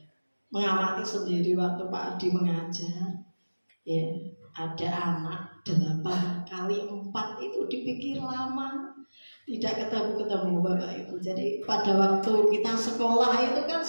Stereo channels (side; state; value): both; inverted; correlation -1.00